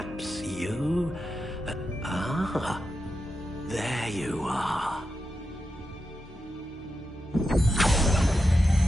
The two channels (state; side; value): normal; both; correlation 0.88